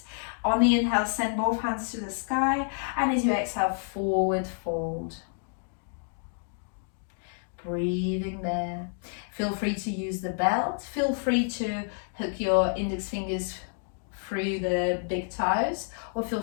On the inhale, send both hands to the sky. And as you exhale, forward fold. Breathing there. Feel free to use the belt. Feel free to hook your index fingers through the big toes, or feel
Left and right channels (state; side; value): silent; right; 57 dB below the other